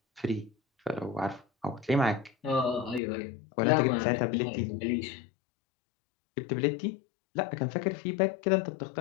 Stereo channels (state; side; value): drops out; right; at 3.0 s